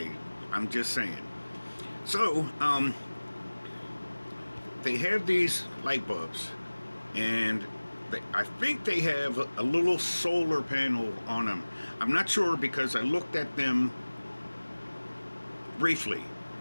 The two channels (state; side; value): inverted; both; correlation -1.00